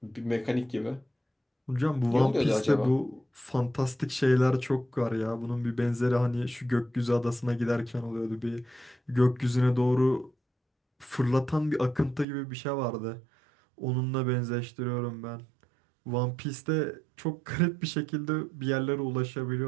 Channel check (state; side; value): drops out; left; at 12.2 s